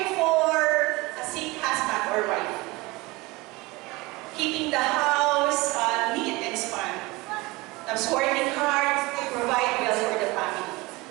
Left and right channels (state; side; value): quieter; left; 22.7 dB